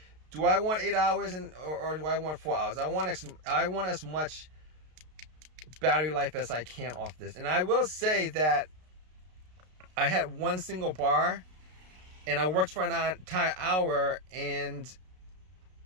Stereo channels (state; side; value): late; left; 33 ms